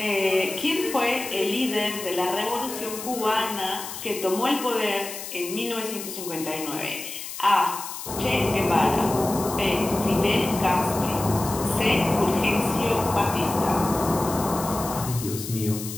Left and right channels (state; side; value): noise; left; hiss, 9 dB below the sound